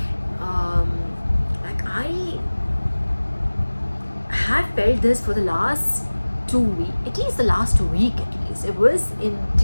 Like I have felt this for the last 2 weeks, at least the last week. It was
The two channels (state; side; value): inverted; both; correlation -1.00